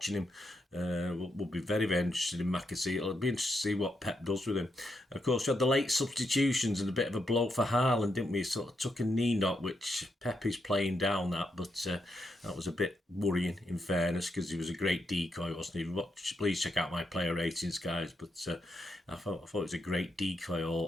him will be very, very interested in McAtee. It'll be interesting to see what Pep does with him. And of course, we had the late substitutions and a bit of a blow for Haaland, didn't we? He sort of took a knee knock, which Pep is playing down that, but that was a bit worrying, in fairness, because he was a great decoy, wasn't he? Please check out my player ratings, guys, but I thought it was a great decoy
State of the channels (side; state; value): both; normal; correlation 0.82